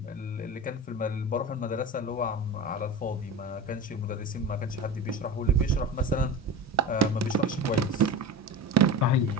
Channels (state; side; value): normal; both; correlation 0.29